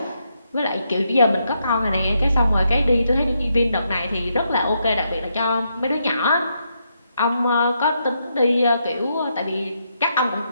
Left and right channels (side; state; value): both; inverted; correlation -0.79